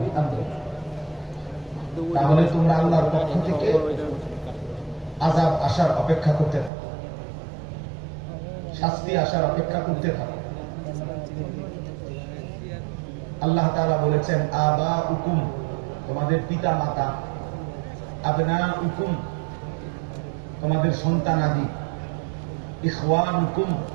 বিআমরিহি, তাহলে তোমরা আল্লাহর পক্ষ থেকে আযাব আসার অপেক্ষা করতে থাকো, শাস্তি আসার অপেক্ষা করতে থাকো। আল্লাহ তাআলা বলেছেন আবাউকুম, তোমাদের পিতা মাতা, আবনাউকুম, তোমাদের সন্তানাদি, ইখওয়ানুকুম,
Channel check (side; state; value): left; drops out; at 6.7 s